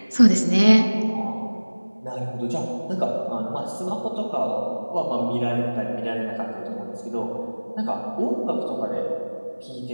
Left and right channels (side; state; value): both; inverted; correlation -1.00